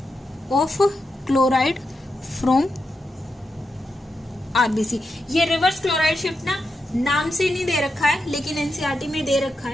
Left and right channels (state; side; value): normal; both; correlation 0.86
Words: of chloride from RBC. ये रिवर्स क्लोराइड शिफ्ट ना नाम से नहीं दे रखा है, लेकिन एनसीईआरटी में दे रखा